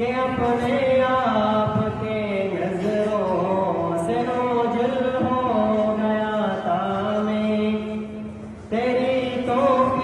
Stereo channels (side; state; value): both; identical; correlation 1.00